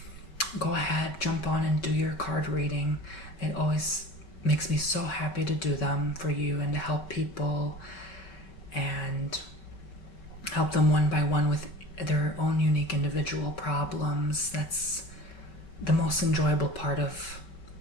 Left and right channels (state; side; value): late; right; 5.3 ms